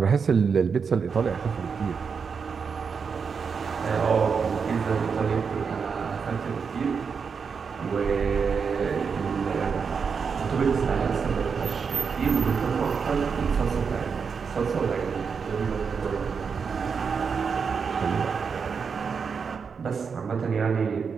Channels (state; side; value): quieter; left; 5.9 dB